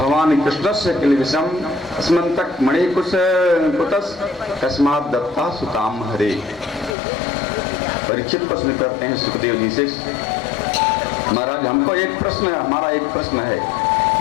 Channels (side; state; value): right; drops out; at 7.0 s